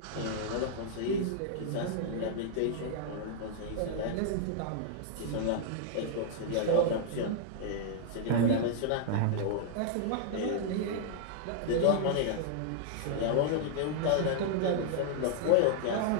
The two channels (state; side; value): different; both; correlation -0.01